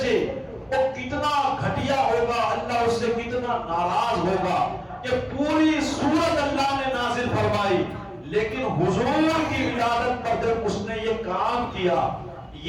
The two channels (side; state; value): both; identical; correlation 1.00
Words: وہ کتنا گھٹیا ہوگا، اللہ اس سے کتنا ناراض ہوگا کہ پوری سورت اللہ نے نازل فرمائی، لیکن حضور کی ولادت پر جب اس نے یہ کام کیا،